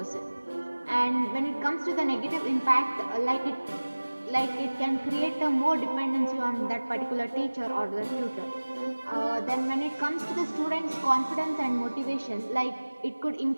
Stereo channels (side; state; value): both; inverted; correlation -1.00